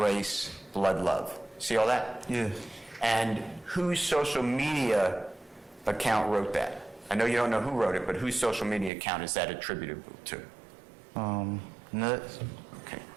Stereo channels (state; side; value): drops out; left; at 8.9 s